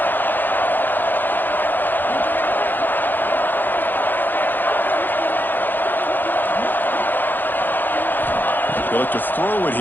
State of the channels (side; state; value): right; late; 0.089 ms